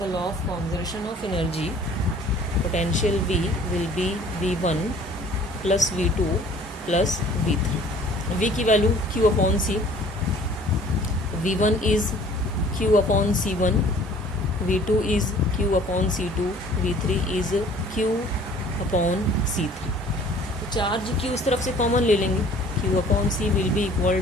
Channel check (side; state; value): both; normal; correlation 0.52